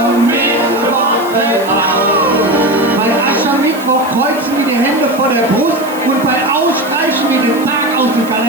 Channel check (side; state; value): right; noise; hiss, 17 dB below the sound